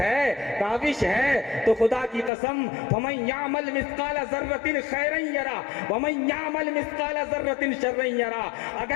काविश है, तो खुदा की कसम फमन यामल मिस्काल ज़र्रतिन खैरन यरा वमन यामल मिस्काल ज़र्रतिन शर्रन यरा।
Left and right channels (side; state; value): right; drops out; at 2.3 s